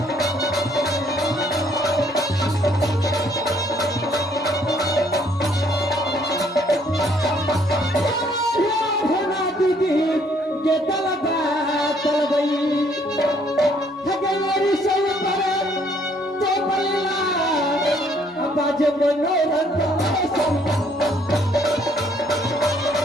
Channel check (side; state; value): both; normal; correlation 0.64